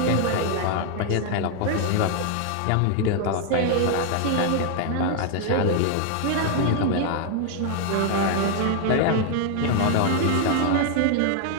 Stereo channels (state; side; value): different; both; correlation 0.00